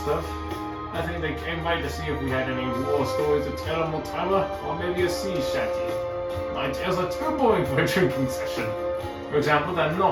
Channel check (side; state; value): both; identical; correlation 1.00